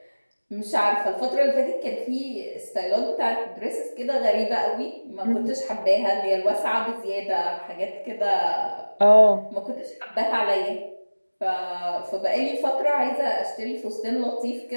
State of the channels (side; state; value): both; inverted; correlation -1.00